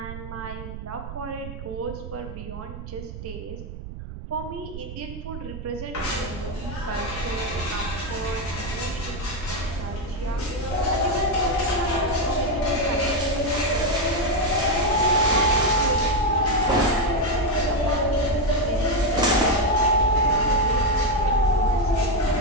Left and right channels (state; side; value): noise; right; rumble, 10 dB below the sound